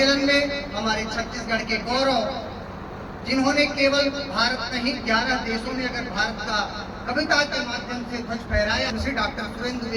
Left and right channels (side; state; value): both; identical; correlation 1.00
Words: में हमारे छत्तीसगढ़ के गौरव, जिन्होंने केवल भारत नहीं 11 देशों में अगर भारत का कविता के माध्यम से ध्वज फहराया, श्री डॉक्टर सुरेंद्र